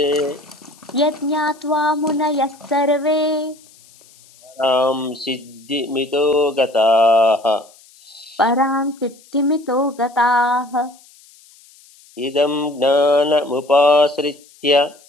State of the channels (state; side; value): noise; left; hiss, 27 dB below the sound